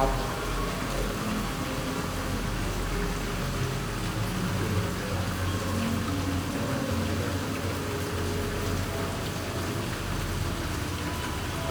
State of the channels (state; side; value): identical; both; correlation 1.00